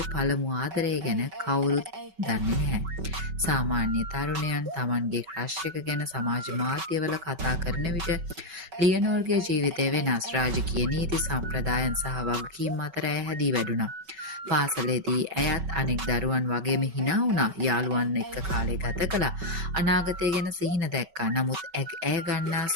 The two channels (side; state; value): left; late; 5.3 ms